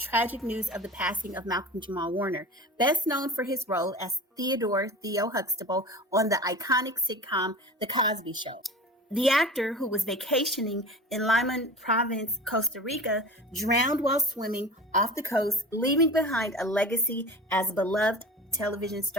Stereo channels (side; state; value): both; normal; correlation 0.36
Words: news of the passing of Malcolm-Jamal Warner, best known for his role as Theo Huxtable on the iconic sitcom The Cosby Show. The actor, who was vacationing in Limon Province, Costa Rica, drowned while swimming off the coast, leaving behind a legacy as a beloved television